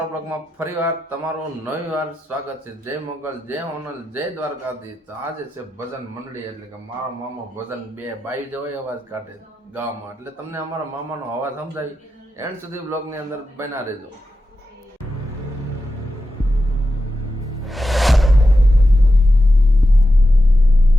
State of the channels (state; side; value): normal; both; correlation 0.89